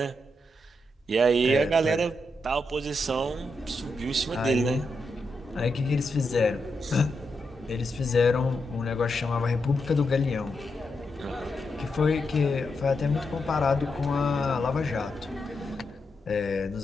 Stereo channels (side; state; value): both; normal; correlation 0.84